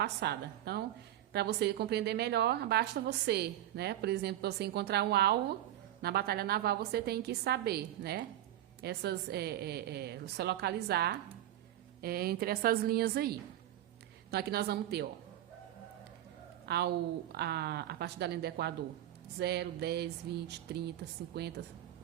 Então, para você compreender melhor, basta você, né? Por exemplo, você encontrar um alvo na batalha naval, você tem que saber, né? Você localizar entre essas linhas aí. Então, aqui nós vamos ter, ó, a partir da linha do Equador, 0, 10, 20, 30, 50,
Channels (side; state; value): left; quieter; 12.9 dB